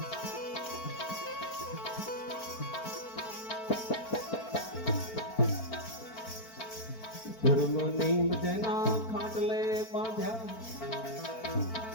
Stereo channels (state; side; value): late; right; 4.5 ms